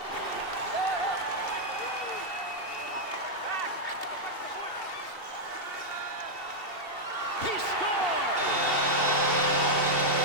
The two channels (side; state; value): right; late; 2.7 ms